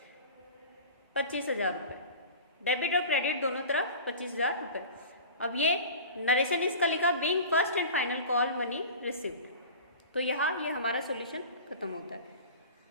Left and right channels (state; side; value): inverted; both; correlation -0.36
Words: 25,000 रुपये, डेबिट और क्रेडिट दोनों तरफ 25,000 रुपये। अब ये नरेशन इसका लिखा being first and final call money received, तो यहाँ ये हमारा सॉल्यूशन खत्म होता है।